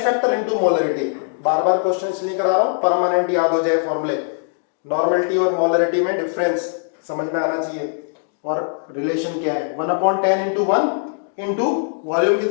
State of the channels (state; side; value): silent; right; digital silence